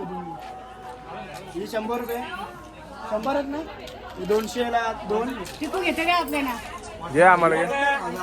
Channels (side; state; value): both; identical; correlation 1.00